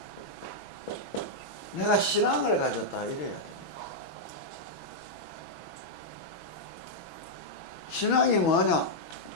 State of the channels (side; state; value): right; late; 6.1 ms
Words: 내가 신앙을 가졌다 이래야 돼. 신앙이 뭐냐?